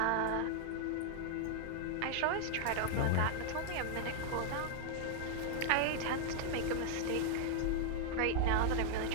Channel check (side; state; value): both; different; correlation -0.01